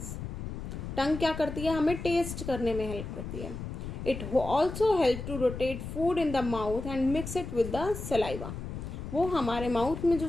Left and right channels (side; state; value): left; noise; rumble, 7 dB below the sound